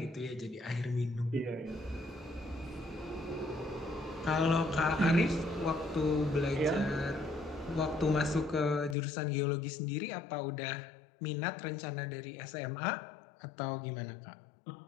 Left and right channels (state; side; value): drops out; right; at 9.0 s